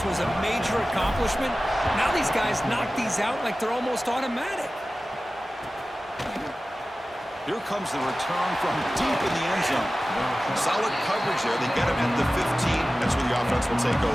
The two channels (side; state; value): both; normal; correlation 0.96